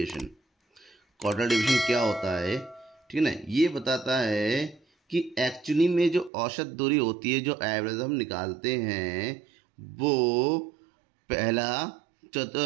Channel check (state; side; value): drops out; left; at 6.3 s